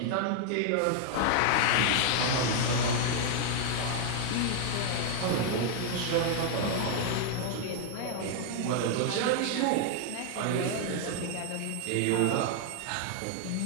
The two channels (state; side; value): different; both; correlation 0.00